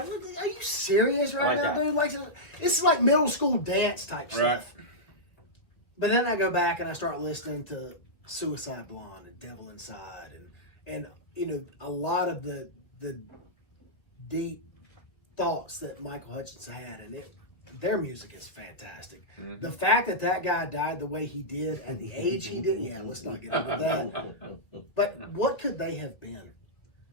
are you serious right like now, that. dude? Like, this is like middle school dance type Right. stuff. But then I go back and I start listening to Suicide Blonde and Devil Inside and you know, a lot of the deep thoughts that Michael Hutchence had, and their music is fantastic. Mm-hmm. The fact that guy died the way he did at the age he did, yeah, let's not get into that. But what could they have been?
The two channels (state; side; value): late; right; 2.0 ms